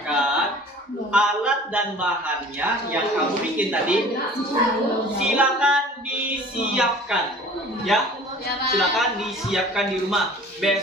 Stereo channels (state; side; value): normal; both; correlation 0.46